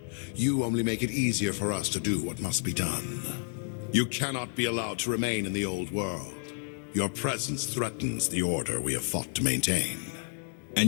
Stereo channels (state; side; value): silent; right; 58 dB below the other